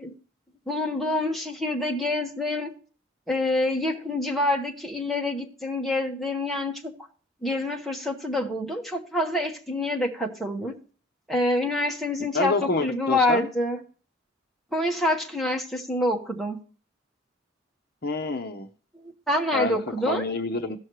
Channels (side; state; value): both; normal; correlation 0.48